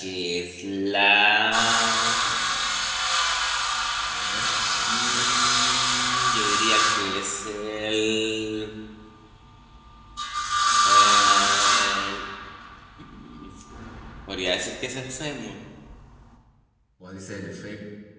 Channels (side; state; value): both; identical; correlation 1.00